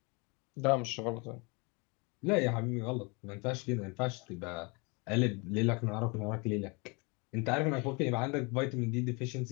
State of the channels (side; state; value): right; quieter; 29.7 dB